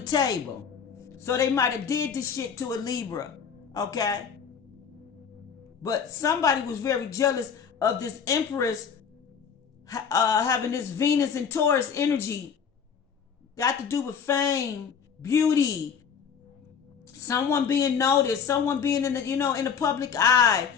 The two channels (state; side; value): quieter; right; 6.9 dB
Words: table, so they might have did this shit to a Libra. Okay, but somebody was very jealous of this empress having this Venus and Taurus energy. Got to do with fame, beauty, someone being noticed, someone being in the in the public eye,